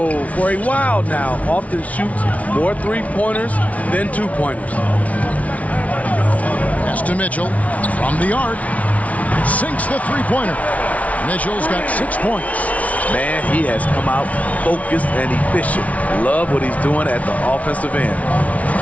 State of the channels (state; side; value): late; right; 0.068 ms